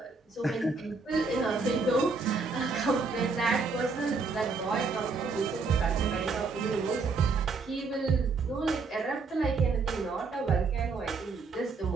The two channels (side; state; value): left; quieter; 4.3 dB